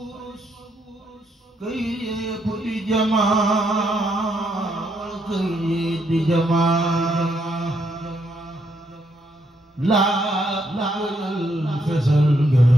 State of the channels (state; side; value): normal; both; correlation 0.76